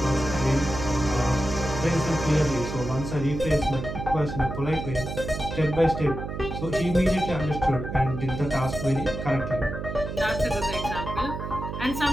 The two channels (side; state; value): right; noise; hum, 6 dB below the sound